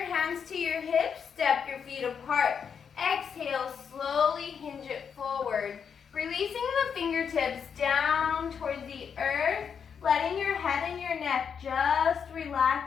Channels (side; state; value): right; quieter; 6.9 dB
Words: hands to your hips, step your feet apart. Exhale, slowly hinge it forward. Releasing the fingertips down towards the earth, letting your head and your neck just